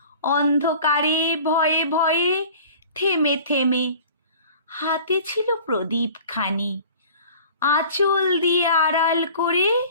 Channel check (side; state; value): both; inverted; correlation -0.45